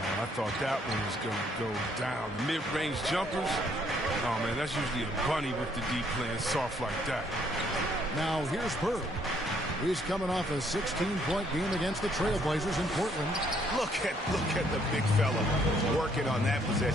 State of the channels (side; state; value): both; normal; correlation 0.67